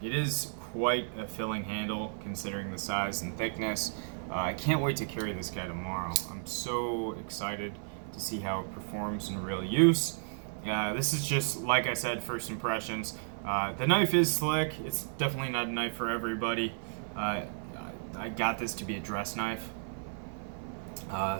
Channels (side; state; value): left; silent; 56 dB below the other